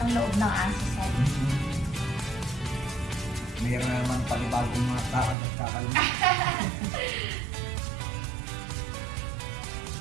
loob ng aso sir. Mayroon na naman panibagong mga takad at kakalunod.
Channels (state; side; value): drops out; left; at 5.4 s